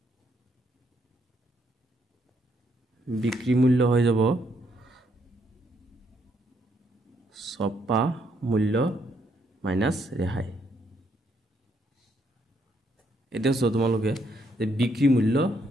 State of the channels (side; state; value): both; normal; correlation 0.73